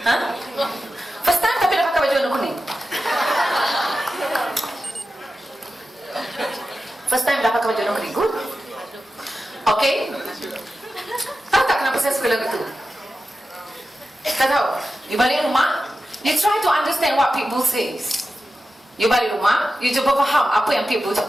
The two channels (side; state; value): both; normal; correlation 0.92